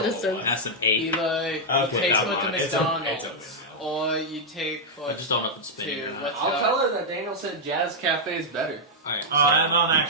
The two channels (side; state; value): both; normal; correlation -0.04